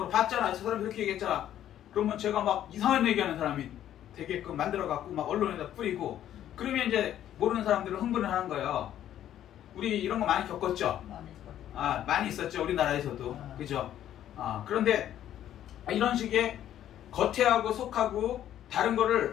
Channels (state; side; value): quieter; right; 11.4 dB